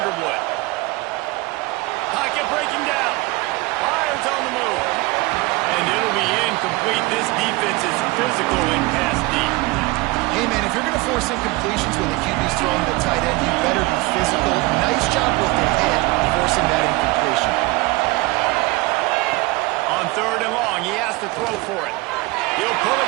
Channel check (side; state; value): left; quieter; 22.6 dB